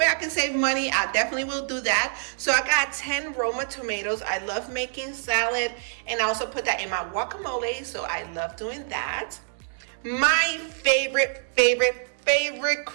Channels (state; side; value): silent; left; digital silence